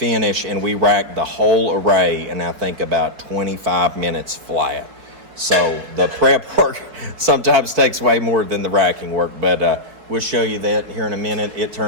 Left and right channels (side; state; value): left; late; 4.3 ms